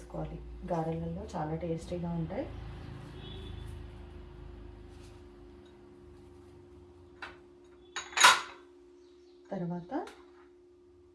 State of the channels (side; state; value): both; identical; correlation 1.00